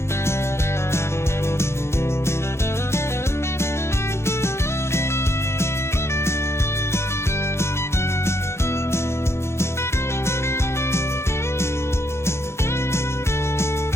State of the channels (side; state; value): right; late; 0.13 ms